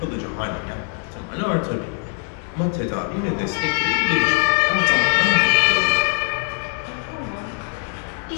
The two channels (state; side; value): quieter; right; 38.4 dB